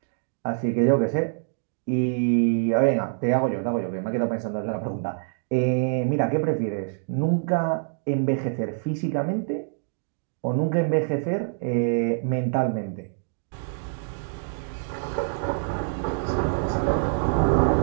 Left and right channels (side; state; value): left; silent; digital silence